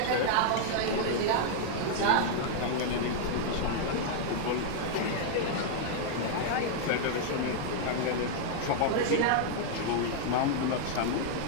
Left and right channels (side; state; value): both; different; correlation -0.01